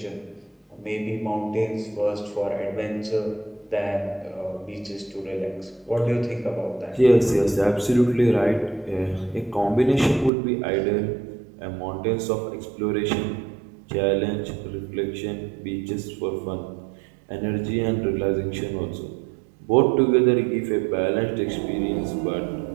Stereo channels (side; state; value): left; drops out; at 10.3 s